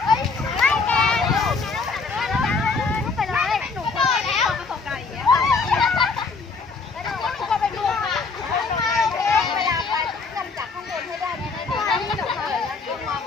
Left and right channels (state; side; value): quieter; right; 4.5 dB